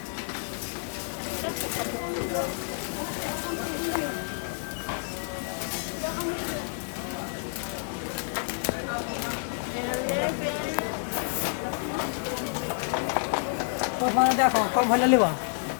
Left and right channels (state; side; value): silent; right; 58 dB below the other